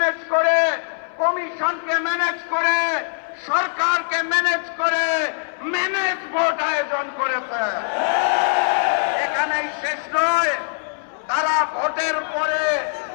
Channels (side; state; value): right; silent; 60 dB below the other